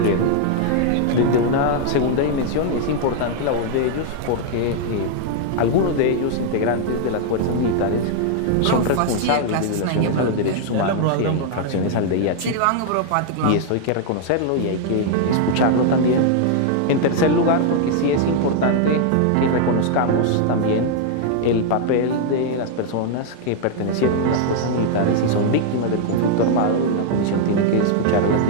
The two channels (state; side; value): different; both; correlation 0.00